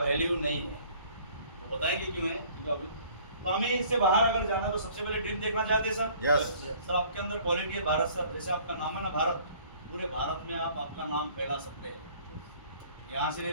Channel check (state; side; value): inverted; both; correlation -0.54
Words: नहीं है। वो बताएंगे क्यों है, क्योंकि अभी तो हमें इससे बाहर अगर जाना है तो सबसे पहले ड्रीम देखना चाहते हैं सर। यस। सर आपके अंदर क्वालिटी है भारत सर, जैसे आपका नाम है ना भारत, पूरे भारत में आप आपका नाम फैला सकते हैं। यहाँ से